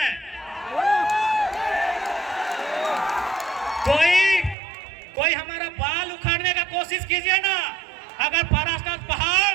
कोई हमारा बाल उखाड़ने का कोशिश कीजिए ना, अगर पारास्तान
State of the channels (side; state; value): left; drops out; at 4.5 s